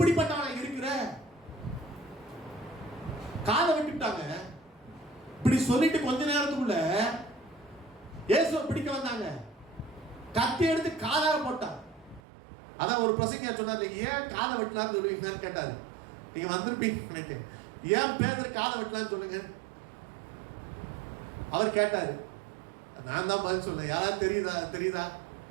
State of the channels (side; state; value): left; drops out; at 12.2 s